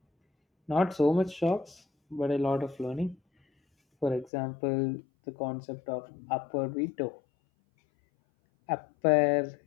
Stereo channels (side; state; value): right; drops out; at 4.3 s